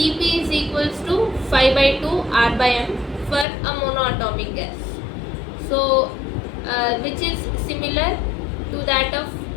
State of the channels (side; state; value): right; drops out; at 3.5 s